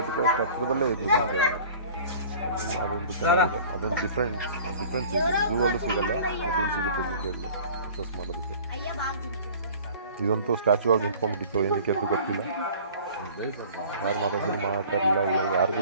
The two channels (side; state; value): both; inverted; correlation -0.46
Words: ಎಟ್ಟಕ್ಕೆ ಅಷ್ಟು ಹತ್ರದಲ್ಲೇ ಇದೆ ಜಿಂಕೆಗಳು. ಅದೊಂದು ಚೆನ್ನಾಗಿದೆ, ಅದೊಂದು ಡಿಫ್ರೆನ್ಸ್ ಇದೆ. ಝೂ ಅಲ್ಲೂ ಸಿಗಲ್ಲ, ಮತ್ತು ಇಲ್ಲಿ ಸಿಗುತ್ತೆ ಜಿಂಕೆಗಳು ಅಕ್ಸಸ್ ಮಾಡೋದಕ್ಕೆ. ಇದಂತೂ ಸ್ಟ್ಯಾಚು ಆಗಿ ನಿಂತ್ಕೊಂಡ್ಬಿಟ್ಟಿತ್ತು, ಏನಕ್ಕೆ ಅಂತ ಗೊತ್ತಿಲ್ಲ. ಯಾರು ಮಾತಾಡಲಿಲ್ಲ, ಯಾರಿಗೂ